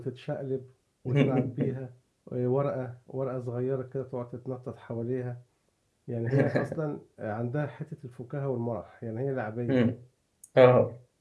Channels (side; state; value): both; identical; correlation 1.00